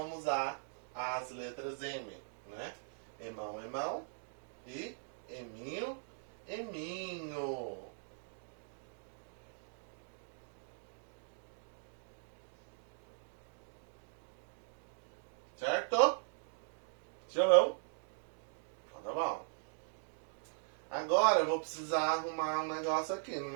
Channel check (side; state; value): left; silent; digital silence